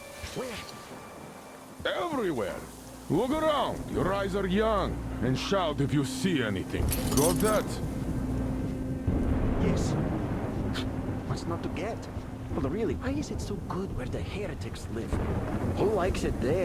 Where? Everywhere. Look around. Your eyes are young. And shout if you see anything. Got that? Yes. What's not to get? Well, really, why is it so good where the heretics live? Who likes it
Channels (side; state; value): both; identical; correlation 1.00